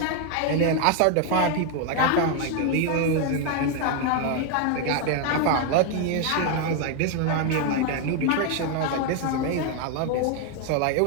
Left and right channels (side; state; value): both; different; correlation 0.01